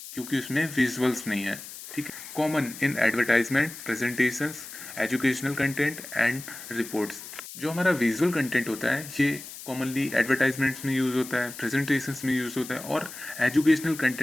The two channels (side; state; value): left; noise; hiss, 13 dB below the sound